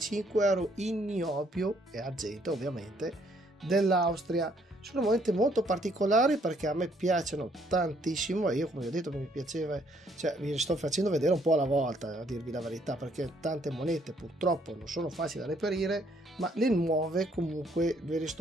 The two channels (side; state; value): both; normal; correlation 0.67